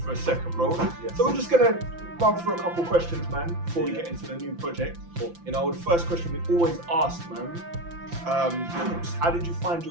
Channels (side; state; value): left; late; 5.9 ms